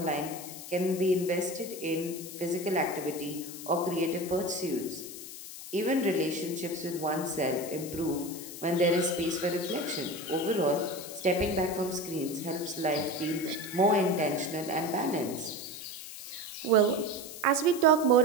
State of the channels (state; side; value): noise; left; hiss, 12 dB below the sound